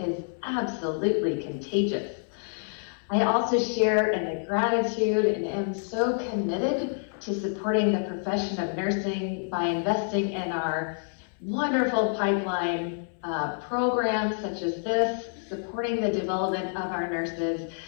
absolutely contagious. I also share in the gratitude and am so committed to supporting the profession of nursing by investing in our wonderful pipeline programs such as this, supporting the development of our nurses.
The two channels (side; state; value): right; silent; 60 dB below the other